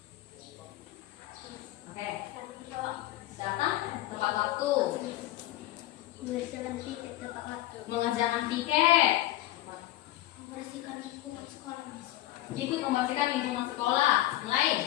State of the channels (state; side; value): quieter; right; 15.5 dB